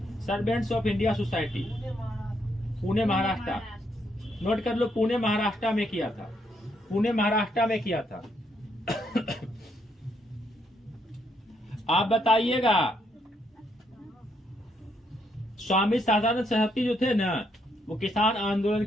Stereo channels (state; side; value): normal; both; correlation 0.75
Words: servants of India society, Pune Maharashtra. Note कर लो, पुणे महाराष्ट्र में किया था। पुणे महाराष्ट्र में किया था। आप बताइएगा, स्वामी साधारण सरस्वती जो थे ना, वो किसान आंदोलन